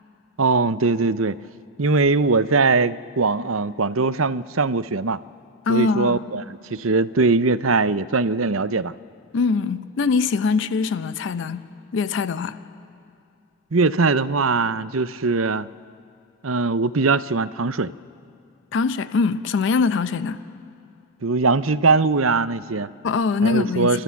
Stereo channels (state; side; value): normal; both; correlation 0.04